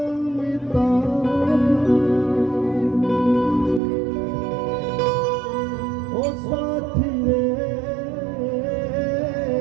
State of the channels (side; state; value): left; drops out; at 3.8 s